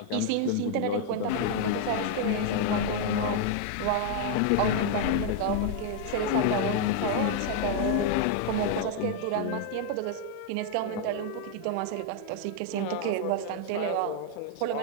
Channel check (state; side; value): different; both; correlation 0.00